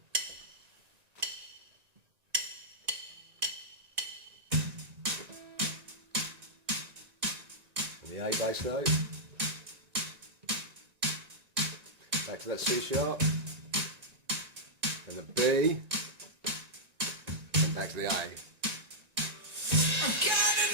And the A bass note. Back to that C sharp. And the B. And back to the A.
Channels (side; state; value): left; late; 1.9 ms